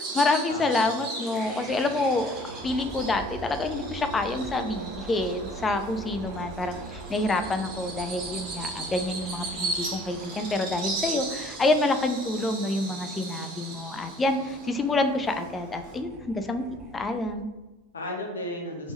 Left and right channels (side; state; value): both; normal; correlation 0.57